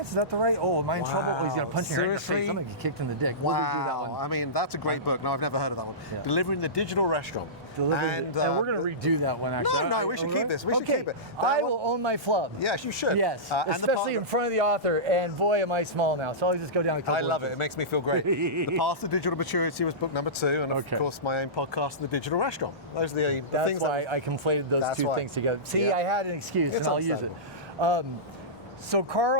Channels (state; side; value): normal; both; correlation -0.19